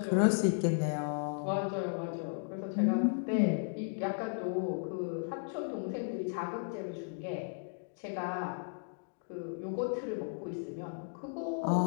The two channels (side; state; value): right; silent; digital silence